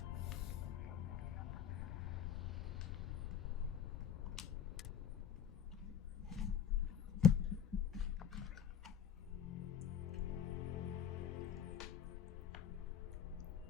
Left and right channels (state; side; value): quieter; right; 8.8 dB